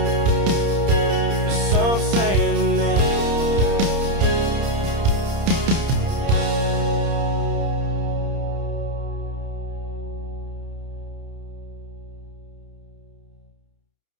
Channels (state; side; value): late; left; 30 ms